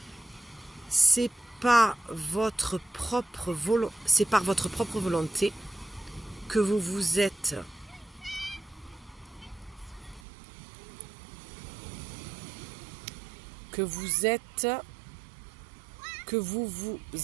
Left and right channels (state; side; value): drops out; left; at 10.2 s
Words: C'est pas votre propre c'est par votre propre volonté que vous vous êtes